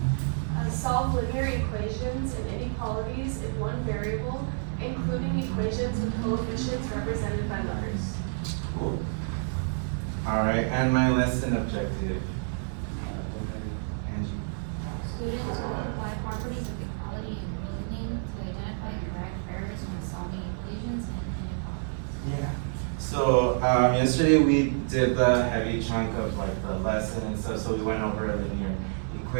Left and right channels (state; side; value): silent; left; 59 dB below the other